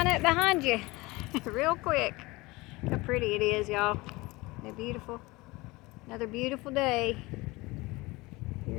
up behind you real quick. Look how pretty it is, y'all. Isn't it beautiful? Another beautiful day here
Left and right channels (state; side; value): quieter; right; 22.4 dB